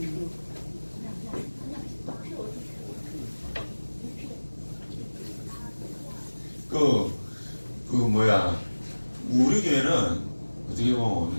우리 교회는 어떻게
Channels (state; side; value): inverted; both; correlation -1.00